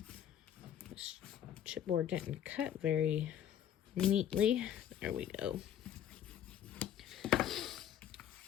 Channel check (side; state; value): right; quieter; 10.2 dB